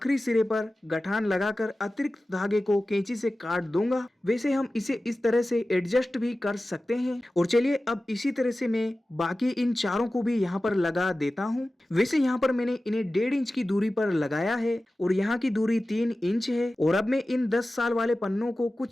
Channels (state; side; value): normal; both; correlation 0.96